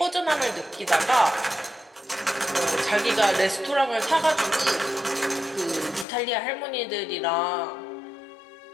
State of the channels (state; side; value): drops out; right; at 6.1 s